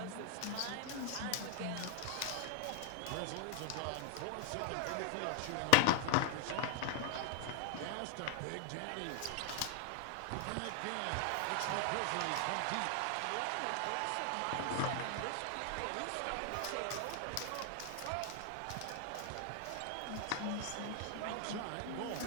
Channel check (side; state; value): both; different; correlation 0.00